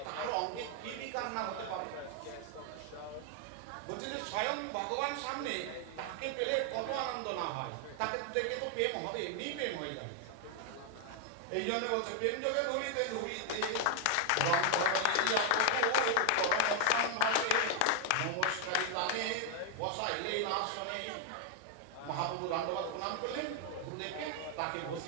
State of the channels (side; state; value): both; different; correlation 0.00